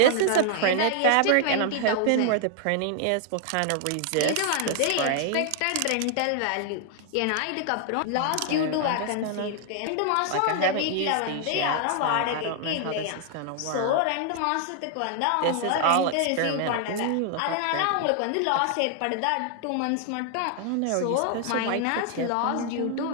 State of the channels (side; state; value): both; different; correlation 0.00